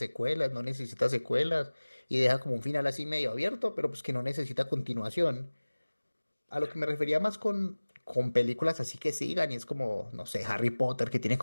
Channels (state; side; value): inverted; both; correlation -1.00